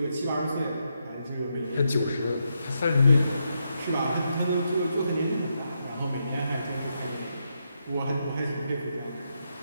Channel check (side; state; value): both; inverted; correlation -0.82